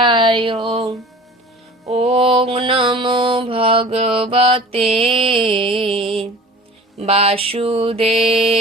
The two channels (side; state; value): both; normal; correlation 0.42